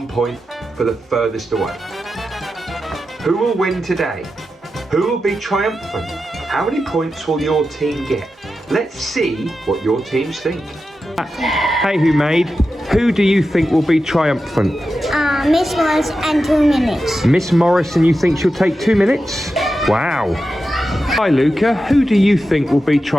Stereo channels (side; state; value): both; normal; correlation 0.90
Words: point for the furthest away. Who will win today? Who will be triumphant? How many points will your team get? Let's see what your teams think. Hey, who do you think will be triumphant? Miss Morris and 2 minutes. Miss Morris, and you think she'll take 2 minutes? Wow. Hi, Luca. Who do you think will be